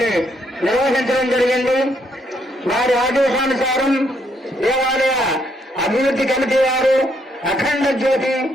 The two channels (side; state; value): both; normal; correlation 0.73